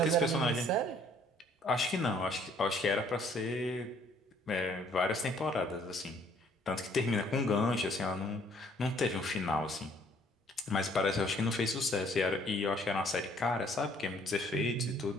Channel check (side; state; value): both; normal; correlation 0.61